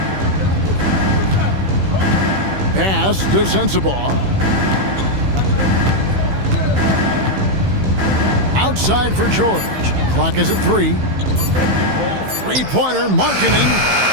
Pass to Sensabaugh. Outside for George. Clock is at 3. Three-pointer, Markkanen.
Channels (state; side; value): late; left; 15 ms